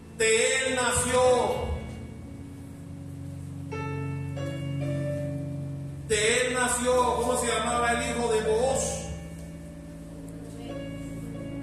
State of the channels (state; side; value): identical; both; correlation 1.00